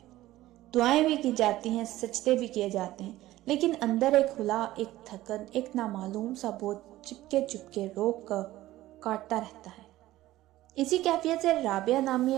دعائیں بھی کی جاتی ہیں، سجدے بھی کیے جاتے ہیں، لیکن اندر ایک ہلا، ایک تھکن، ایک نامعلوم سا بوجھ چپکے روک کر کاٹتا رہتا ہے۔ اسی کیفیت سے رابعہ نامی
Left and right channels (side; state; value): left; quieter; 15.9 dB